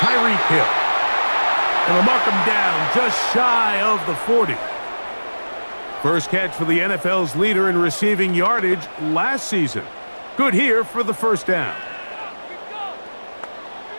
Hill. And they'll mark him down just shy of the 40. First catch for the NFL's leader in receiving yardage last season. Good here for the 1st down.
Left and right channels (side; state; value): both; inverted; correlation -1.00